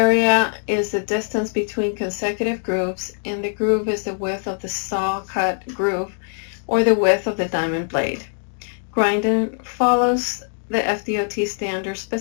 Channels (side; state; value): right; silent; 64 dB below the other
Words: is the distance between consecutive grooves, and the groove is the width of the saw cut groove or the width of the diamond blade. Grinding follows the FDOT standard